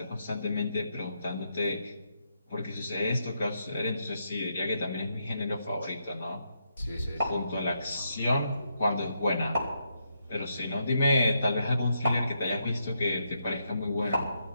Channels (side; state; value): both; inverted; correlation -0.80